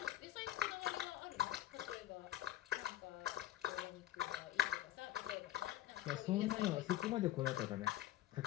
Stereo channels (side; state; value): right; quieter; 14.0 dB